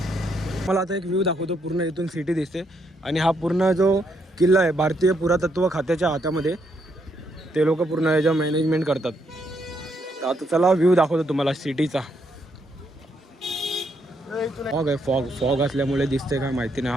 मला आता एक व्ह्यू दाखवतो. पूर्ण इथून सिटी दिसते. आणि हा पूर्ण जो किल्ला आहे भारतीय पुरातत्व खात्याच्या हातामध्ये, ते लोक पूर्ण याच्या मॅनेजमेंट करतात. तर आता चला व्ह्यू दाखवतो तुम्हाला सिटीचा. फॉग आहे, फॉग असल्यामुळे दिसते काय माहिती नाही.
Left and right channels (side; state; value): both; normal; correlation 0.75